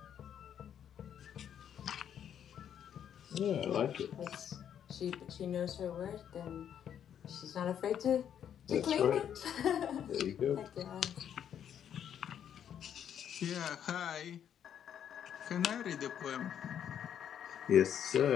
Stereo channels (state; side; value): quieter; right; 9.2 dB